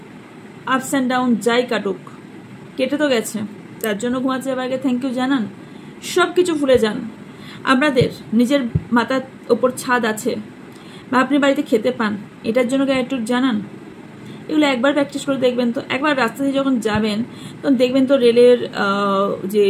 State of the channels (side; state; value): both; identical; correlation 1.00